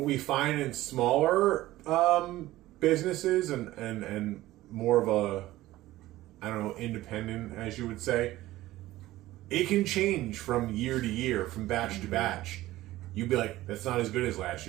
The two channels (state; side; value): quieter; left; 16.4 dB